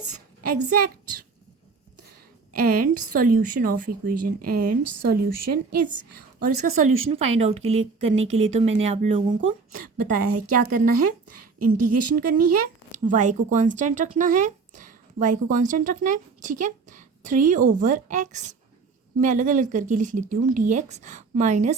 exact, and solution of equation, and solution is. और इसका सॉल्यूशन फाइंड आउट करने के लिए तो मैंने आप लोगों को बताया है क्या करना है, इंटीग्रेशन करनी है, y को कांस्टेंट रखना है, y को कांस्टेंट रखना है। ठीक है, 3/x मैं अलग अलग करके लिख लेती हूँ, dx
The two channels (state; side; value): quieter; left; 4.6 dB